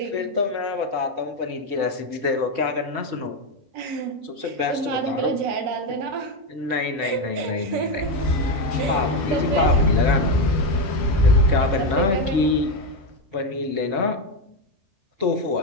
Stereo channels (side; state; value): left; late; 5.0 ms